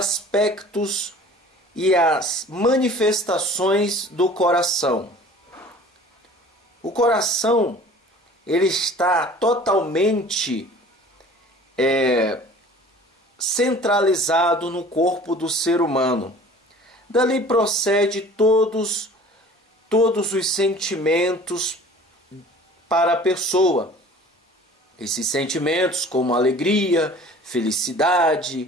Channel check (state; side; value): normal; both; correlation 0.46